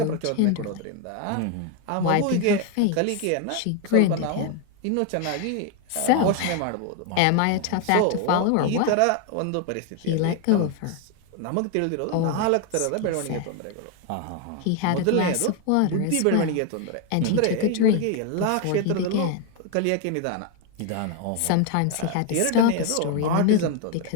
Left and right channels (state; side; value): different; both; correlation 0.01